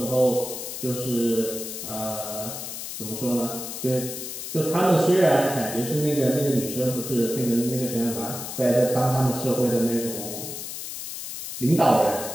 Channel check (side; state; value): left; noise; hiss, 7 dB below the sound